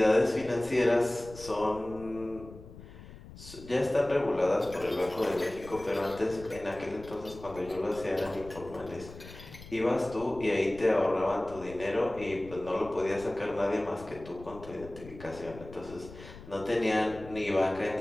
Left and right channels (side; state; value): left; noise; rumble, 16 dB below the sound